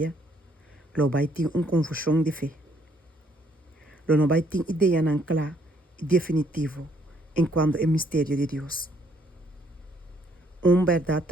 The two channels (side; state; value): both; normal; correlation 0.67